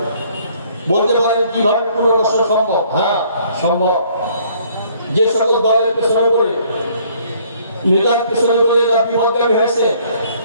বলতে পারেন কিভাবে পুনর্বাসন সম্ভব? হ্যাঁ, সম্ভব। যে সকল দলের পেছনে করে, নেতার পেছনে করে এরা বিপদগামী হয়েছে,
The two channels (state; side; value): inverted; both; correlation -0.61